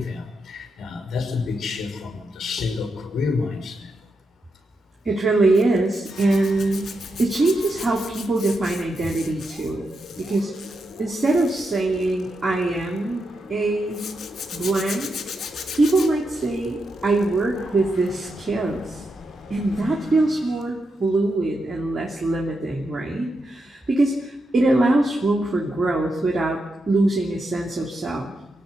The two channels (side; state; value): both; normal; correlation 0.85